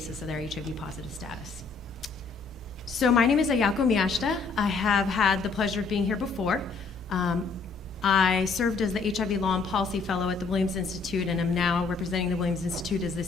of their HIV-positive status. So my name is Ayako Miyashita. I have had the pleasure of being here before. I served as the HIV Law and Policy Fellow at the Williams Institute and am now representing the Williams Institute as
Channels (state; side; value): quieter; right; 4.5 dB